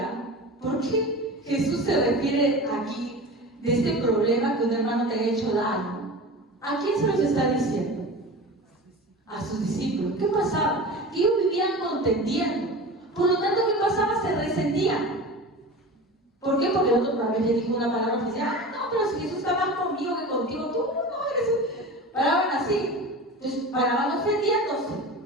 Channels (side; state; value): both; normal; correlation 0.32